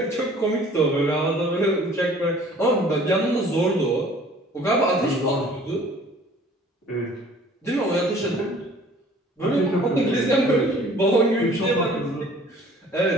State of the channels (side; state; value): both; normal; correlation 0.52